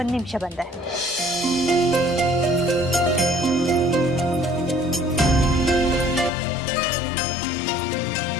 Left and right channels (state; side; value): drops out; right; at 6.3 s